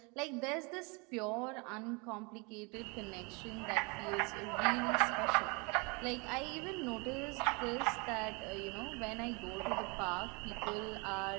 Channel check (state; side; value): quieter; left; 30.0 dB